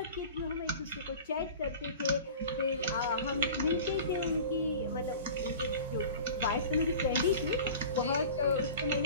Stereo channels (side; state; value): both; inverted; correlation -0.39